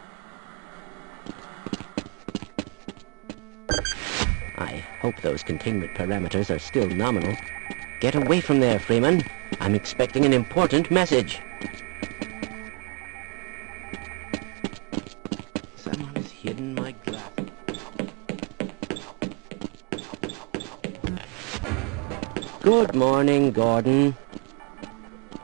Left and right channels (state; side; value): quieter; left; 34.5 dB